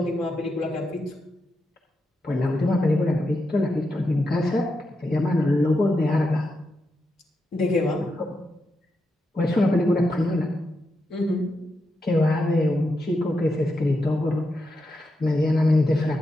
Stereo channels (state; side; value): normal; both; correlation 0.86